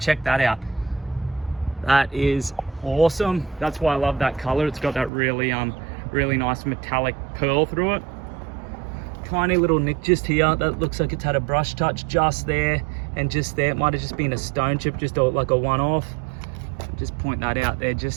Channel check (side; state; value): left; drops out; at 5.1 s